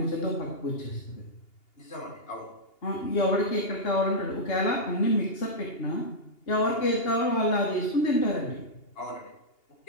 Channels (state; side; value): late; right; 2.8 ms